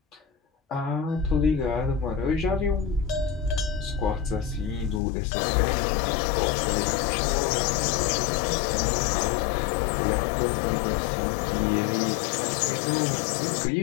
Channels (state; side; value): drops out; right; at 5.0 s